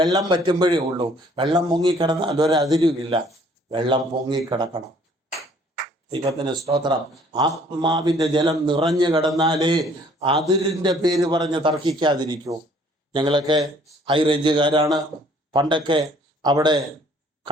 പറ്റുമ്പോഴേ ഉള്ളൂ. വെള്ളം പൊങ്ങിക്കിടന്നാൽ ഒരതിരുമില്ല. വെള്ളം പൊങ്ങിക്കിടക്കണം. ദൈവത്തിന് സ്തോത്രം. ആത്മാവിൻ്റെ ജലം നിറഞ്ഞു കിടന്നാലേ അതിരിൻ്റെ പേര് പറഞ്ഞ് തർക്കിക്കാതിരിക്കൂ. ഞങ്ങളൊക്കെ ഹൈ റേഞ്ചുകാരാണ്. പണ്ടൊക്കെ അവിടെ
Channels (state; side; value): normal; both; correlation 0.59